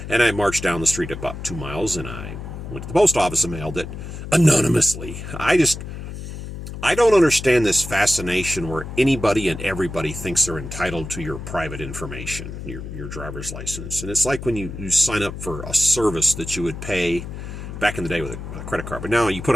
And I marched down the street about 2 miles, and I went to the post office and mailed it anonymously. I don't understand this fascination where anybody and everybody thinks they're entitled to your private information, your driver's license. And it's like when you sign up for a service that you would pay back in the day with a credit card. But now you put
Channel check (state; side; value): noise; left; hum, 9 dB below the sound